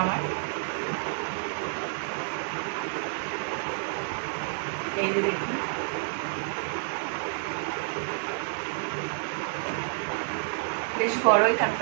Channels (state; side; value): silent; left; 58 dB below the other